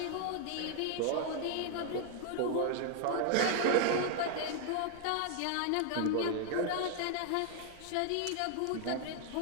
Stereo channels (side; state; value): both; different; correlation 0.00